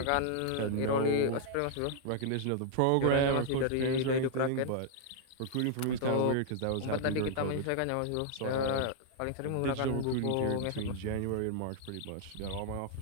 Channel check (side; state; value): both; different; correlation -0.01